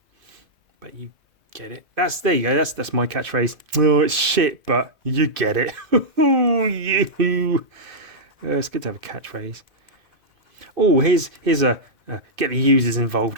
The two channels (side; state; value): left; late; 2.5 ms